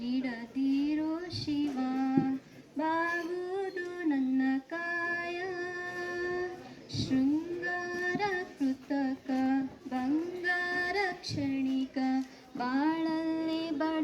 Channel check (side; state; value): both; identical; correlation 1.00